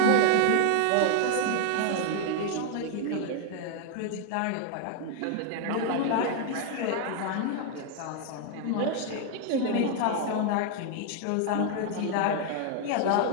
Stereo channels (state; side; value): different; both; correlation 0.00